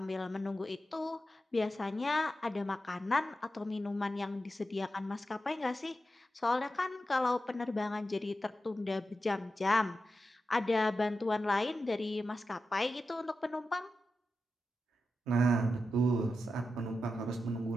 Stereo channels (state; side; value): normal; both; correlation 0.90